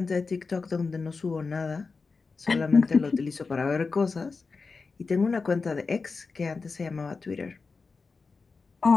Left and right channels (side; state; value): right; quieter; 4.4 dB